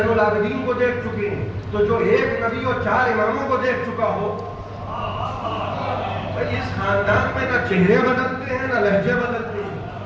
العابدین کو دیکھ چکے ہیں. تو جو ایک نبی اور 4 اماموں کو دیکھ چکا ہو, اس خاندان میں نہ چہرے بدلتے ہیں نہ لہجے بدلتے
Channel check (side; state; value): both; identical; correlation 1.00